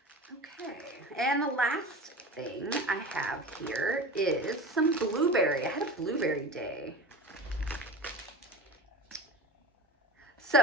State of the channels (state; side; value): normal; both; correlation 0.33